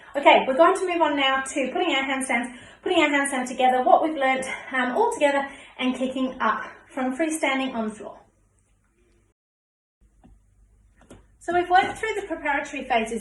Okay, we're going to move on now to putting our handstand together, what we've learnt all together, and kicking up from freestanding on the floor. So we've worked through the preparatory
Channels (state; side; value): identical; both; correlation 1.00